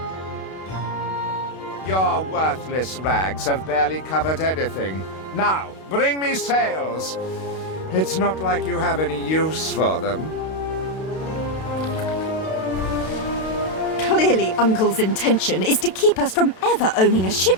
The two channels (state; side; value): late; right; 32 ms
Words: Your worthless rags have barely covered anything. Now, bring me sails. It's not like you have any use for them. Clearly, Uncle's intention is to keep us from ever owning a